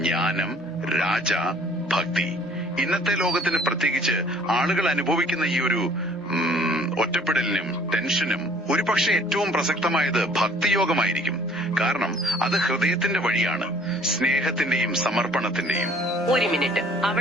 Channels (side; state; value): both; normal; correlation 0.55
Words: ജ്ഞാനം, രാജ, ഭക്തി, ഇന്നത്തെ ലോകത്തിന് പ്രത്യേകിച്ച് ആളുകൾ അനുഭവിക്കുന്ന ഈ ഒരു ഒറ്റപ്പെടലിനും ടെൻഷനും ഒരുപക്ഷെ ഏറ്റവും പ്രസക്തമായത് ഭക്തിയോഗമായിരിക്കും. കാരണം അത് ഹൃദയത്തിന്റെ വഴിയാണ്, സ്നേഹത്തിന്റെയും സമർപ്പണത്തിന്റെയും. ഒരു മിനിറ്റ്,